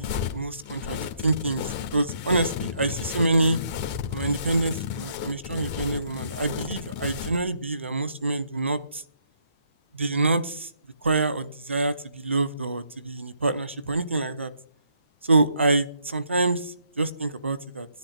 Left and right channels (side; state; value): both; inverted; correlation -0.71